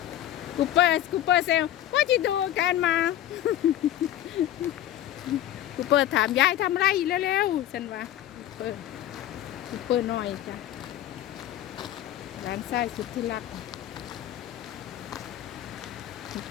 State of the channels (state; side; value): quieter; right; 12.4 dB